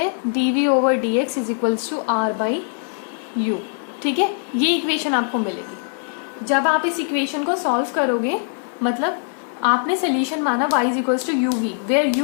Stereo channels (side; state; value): right; silent; 55 dB below the other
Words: d v over d x is equals to r by u. ठीक है, ये इक्वेशन आपको मिलेगी। जब आप इस इक्वेशन को सॉल्व करोगे, मतलब आपने सोल्यूशन माना y is equals to u v, where